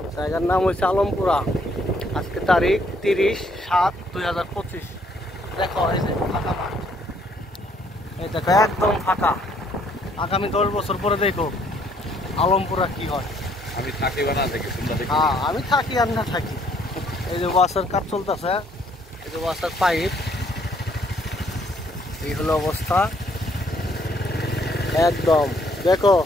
জায়গার নাম হচ্ছে আলমপুরা। আজকে তারিখ 30/7/2025। দেখো এই যে ফাঁকা মাঠ, এই দেখো একদম ফাঁকা। আগামী 10 বছর পরে দেখো আলমপুরা কি হয়। আমি থাকি বা না থাকি তোমরা দেখো। হ্যাঁ আমি থাকি আর না থাকি। এই যে ওয়াসার কাজ চলতেছে, এই যে ওয়াসার পাইপ, এই হলো অবস্থা একদম। দেখো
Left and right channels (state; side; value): normal; both; correlation 0.66